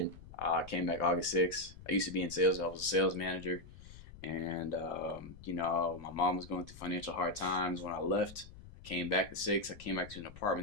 I came back August 6th. I used to be in sales. I was a sales manager. And, my mom was going through financial hard times. When I left, I came back the 6th. I came back to an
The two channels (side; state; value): left; noise; rumble, 17 dB below the sound